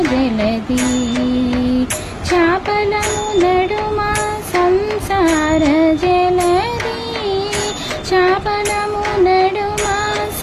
జలది. చాపలము నడుమ సంసార జలది, చాపలము నడుమ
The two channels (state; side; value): identical; both; correlation 1.00